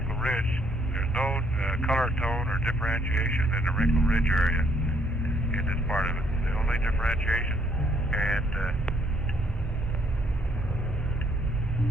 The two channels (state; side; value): normal; both; correlation 0.68